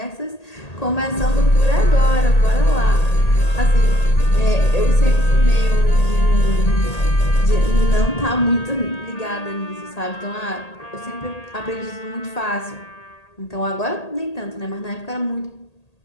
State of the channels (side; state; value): right; late; 1.8 ms